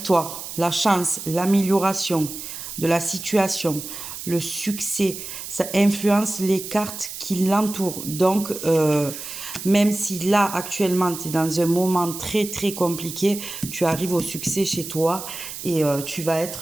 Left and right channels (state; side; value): noise; right; hiss, 9 dB below the sound